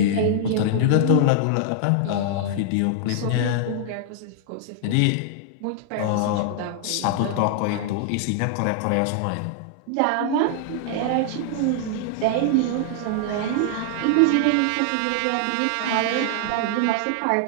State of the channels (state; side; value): different; both; correlation 0.00